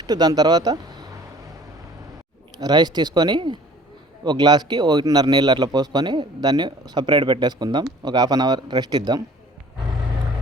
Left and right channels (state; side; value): normal; both; correlation 0.51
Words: దాని తర్వాత రైస్ తీసుకొని ఒక గ్లాస్కి 1.5 నీళ్ళు అట్లా పోసుకొని దాన్ని సపరేట్ పెట్టేసుకుందాం. ఒక 1/2 అవర్ రెస్ట్ ఇద్దాం.